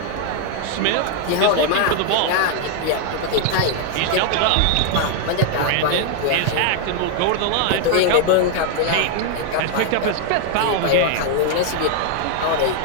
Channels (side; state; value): both; different; correlation 0.00